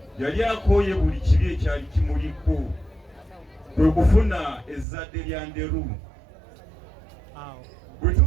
yali akooye buli kibi ekyali kimuliko, kwe kufuna ezzadde lya Nderu. Bwe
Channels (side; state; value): left; drops out; at 4.9 s